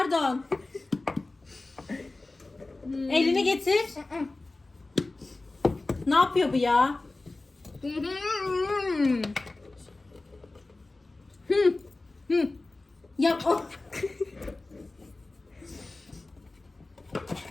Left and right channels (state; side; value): quieter; right; 3.1 dB